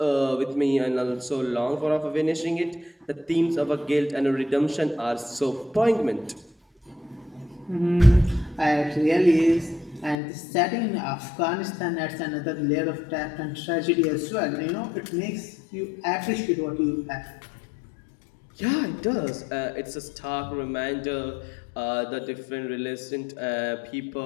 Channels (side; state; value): right; drops out; at 10.2 s